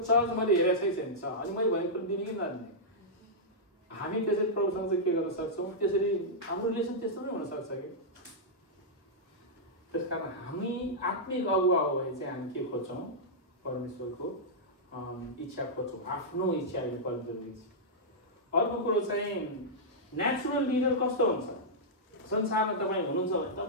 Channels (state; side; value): normal; both; correlation -0.10